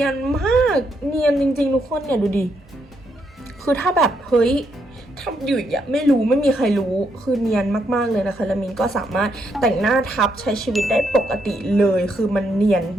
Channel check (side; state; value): both; normal; correlation 0.77